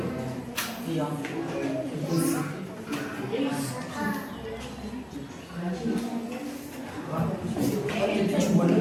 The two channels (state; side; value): identical; both; correlation 1.00